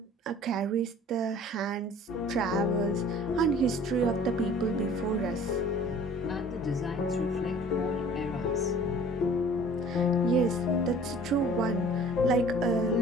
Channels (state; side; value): normal; both; correlation 0.49